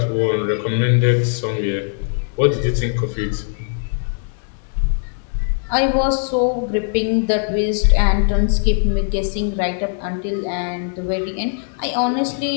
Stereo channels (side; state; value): right; silent; digital silence